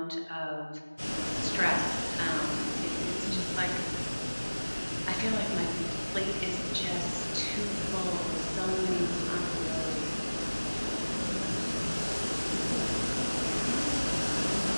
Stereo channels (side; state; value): both; inverted; correlation -1.00